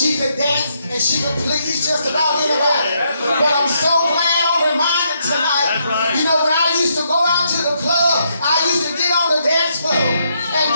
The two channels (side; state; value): both; inverted; correlation -0.76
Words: could dance and she could please just about anybody. But I'm so glad I'm reminded tonight. You know, when I used to go out to the club, I used to get on the dance floor and